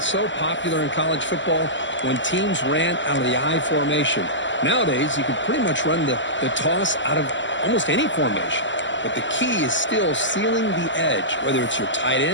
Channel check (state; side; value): late; right; 0.54 ms